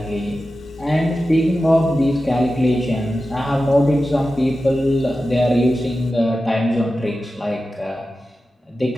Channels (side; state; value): both; normal; correlation 0.93